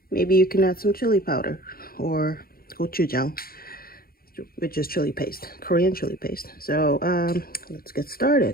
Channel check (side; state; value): right; late; 0.43 ms